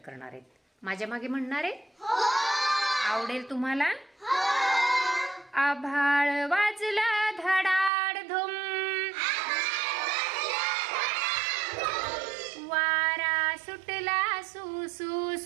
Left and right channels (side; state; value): left; drops out; at 7.9 s